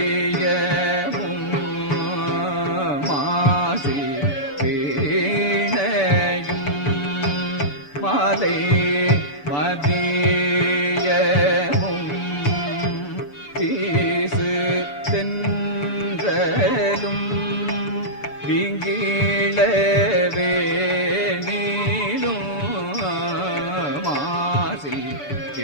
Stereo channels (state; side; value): late; right; 6.9 ms